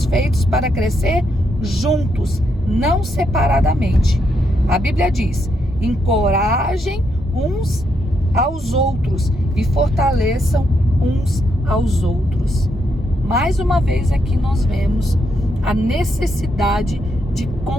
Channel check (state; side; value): normal; both; correlation 0.79